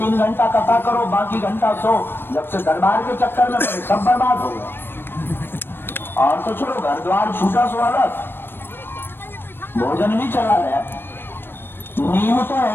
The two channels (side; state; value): right; late; 0.10 ms